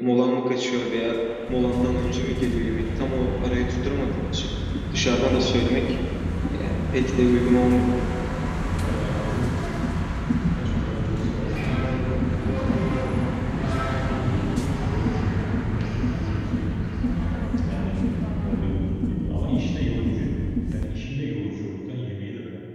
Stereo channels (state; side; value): identical; both; correlation 1.00